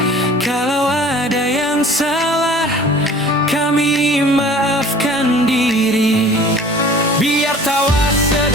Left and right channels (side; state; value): both; normal; correlation 0.47